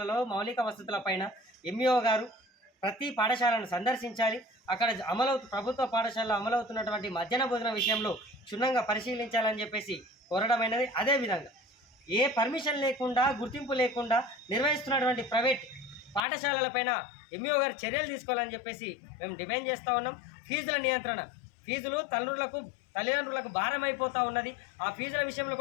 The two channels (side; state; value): right; drops out; at 16.2 s